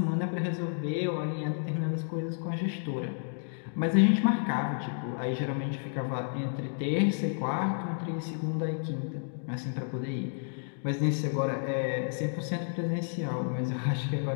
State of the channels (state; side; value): silent; right; digital silence